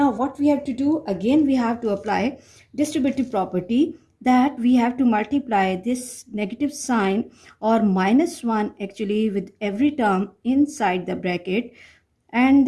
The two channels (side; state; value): both; identical; correlation 1.00